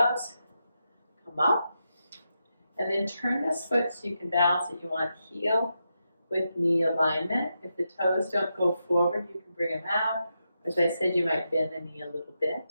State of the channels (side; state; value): both; inverted; correlation -0.86